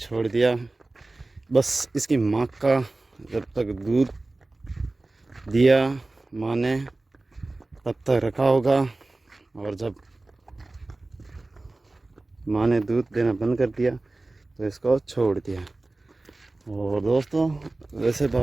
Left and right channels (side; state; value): left; quieter; 3.0 dB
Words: दिया। बस इसकी माँ का जब तक दूध दिया माँ ने तब तक रखा होगा, और जब माँ ने दूध देना बंद कर दिया तो इसको छोड़ दिया। और दोस्तों, वैसे